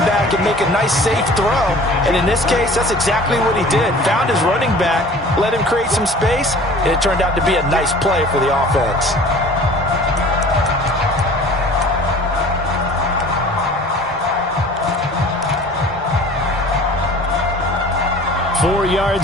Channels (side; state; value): both; normal; correlation 0.46